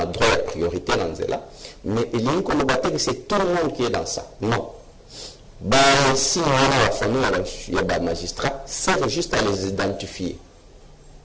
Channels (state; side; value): identical; both; correlation 1.00